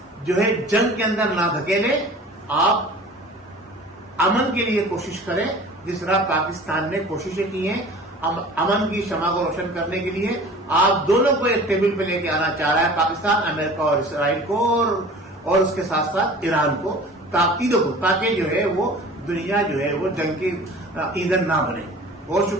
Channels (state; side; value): normal; both; correlation 0.43